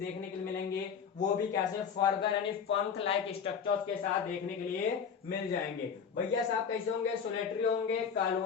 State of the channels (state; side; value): quieter; right; 6.9 dB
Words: के लिए मिलेंगे, वो भी कैसे फर्दर यानी पंख लाइक स्ट्रक्चर्स के साथ देखने के लिए मिल जाएंगे। भैया साहब कैसे होंगे? सोलेटरी होंगे,